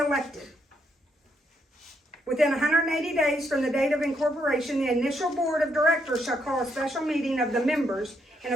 Within 180 days from the date of incorporation, the initial board of directors shall call a special meeting of the members in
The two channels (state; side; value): normal; both; correlation 0.76